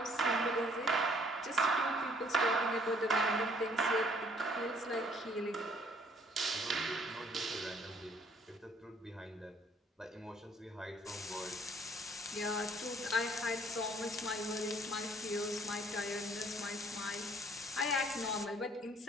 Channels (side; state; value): both; normal; correlation 0.61